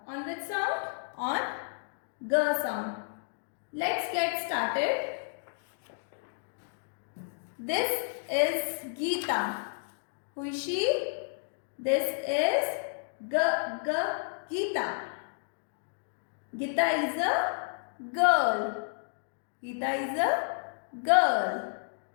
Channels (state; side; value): silent; right; digital silence